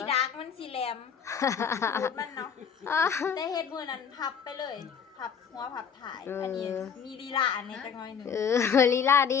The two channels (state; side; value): quieter; right; 7.0 dB